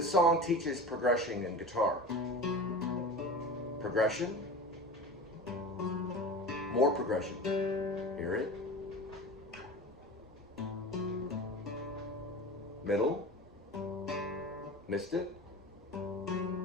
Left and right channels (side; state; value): both; normal; correlation 0.33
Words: song teaches progression in guitar. Progression. More progression. Hear it. Middle. Missed it.